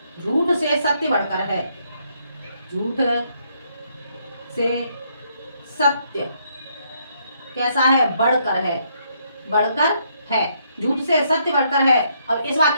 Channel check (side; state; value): both; inverted; correlation -0.73